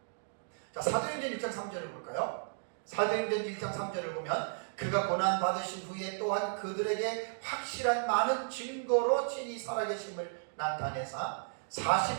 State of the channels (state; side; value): silent; left; digital silence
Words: 자, 사도행전 1장 3절을 볼까요? 사도행전 1장 3절을 보면 그가 고난받으신 후에 또한 그들에게 확실한 많은 증거로 친히 살아계심을 나타내사